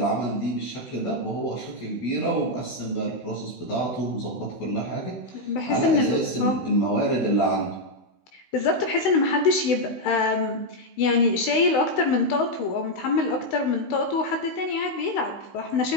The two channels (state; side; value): late; right; 16 ms